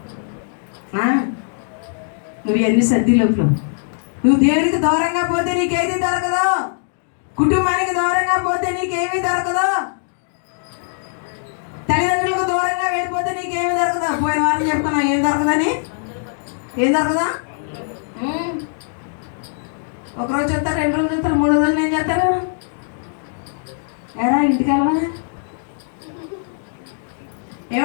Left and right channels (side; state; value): right; silent; digital silence